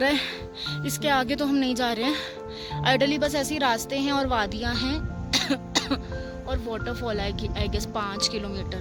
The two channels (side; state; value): both; identical; correlation 1.00